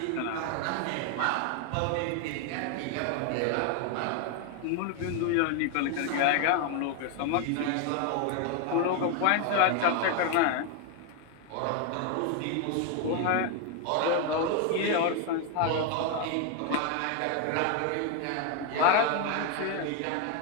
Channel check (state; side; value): different; both; correlation 0.01